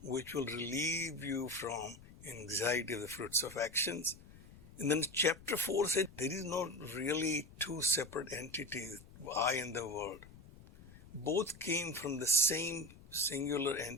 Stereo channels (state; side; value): noise; left; rumble, 20 dB below the sound